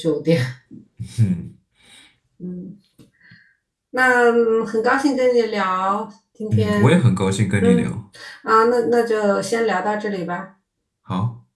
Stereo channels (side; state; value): both; identical; correlation 1.00